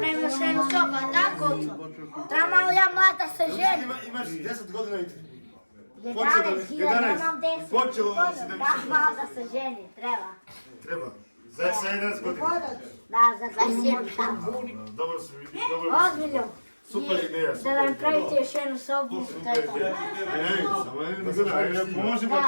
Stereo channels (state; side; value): inverted; both; correlation -1.00